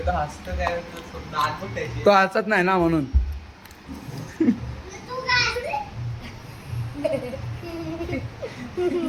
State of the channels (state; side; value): identical; both; correlation 1.00